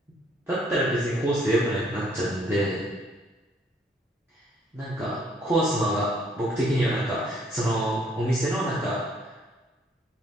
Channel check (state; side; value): normal; both; correlation 0.65